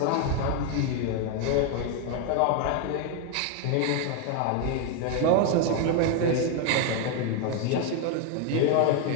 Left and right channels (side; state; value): both; different; correlation 0.01